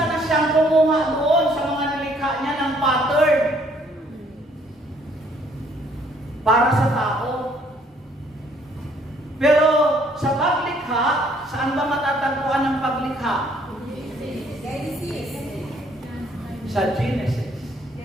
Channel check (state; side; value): normal; both; correlation 0.63